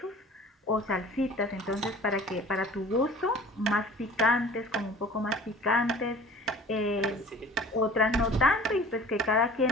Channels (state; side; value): normal; both; correlation 0.45